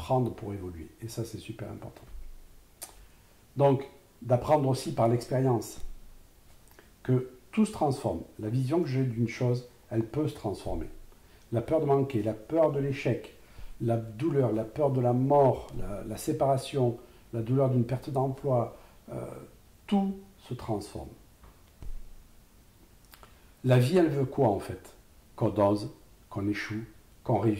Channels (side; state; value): both; identical; correlation 1.00